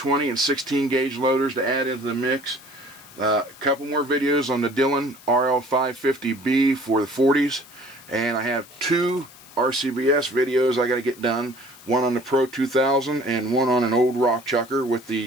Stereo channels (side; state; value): left; noise; hiss, 22 dB below the sound